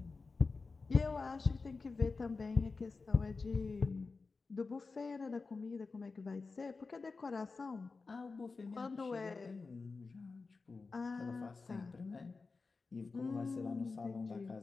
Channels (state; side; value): quieter; right; 4.2 dB